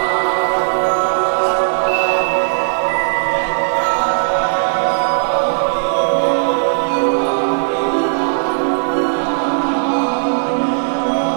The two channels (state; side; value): silent; left; digital silence